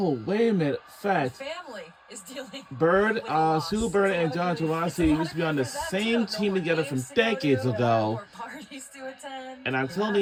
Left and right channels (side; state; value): both; identical; correlation 1.00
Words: wait a minute. Your Fact. family is dealing. Bird, with a loss. Sue Bird and It's a John lot of grief. Taurasi used to be on the It's a lot of same grief for that, team too. together No from more games to go decades to, ago. no more parties to attend. And I'm telling